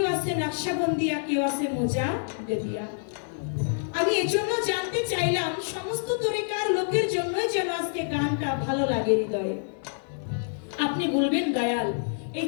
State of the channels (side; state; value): right; silent; 60 dB below the other